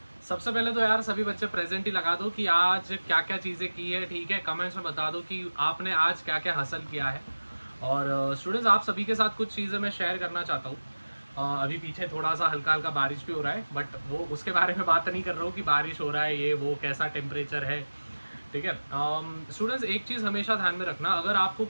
सबसे पहले तो यार सभी बच्चे प्रेजेंट ही लगा दो कि आज क्या क्या चीज़ें की है, ठीक है। कमेंट्स में बता दो कि आपने आज क्या क्या हासिल किया है। और स्टूडेंट्स, आप सभी के साथ कुछ चीज़ें मैं शेयर करना चाहता हूँ। अभी पीछे थोड़ा सा हल्का हल्का बारिश भी हो रहा है, बट वो उसके बारे में बात नहीं कर रहा हूँ कि बारिश हो रहा है, ये वो कैसा टेम्परेचर है, ठीक है। स्टूडेंट्स, एक चीज़ हमेशा ध्यान में रखना, अगर आपको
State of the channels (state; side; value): inverted; both; correlation -1.00